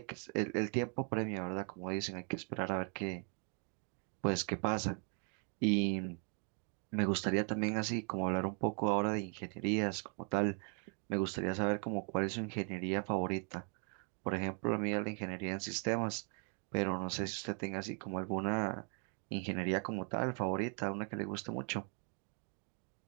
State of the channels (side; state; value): left; quieter; 39.6 dB